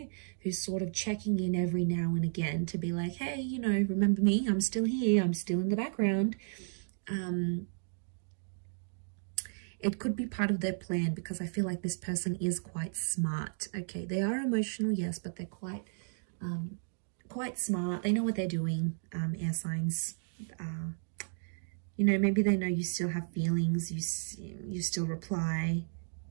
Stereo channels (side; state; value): left; silent; digital silence